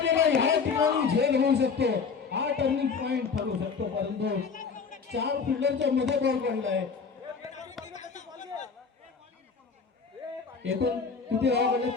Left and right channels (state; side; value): quieter; right; 5.4 dB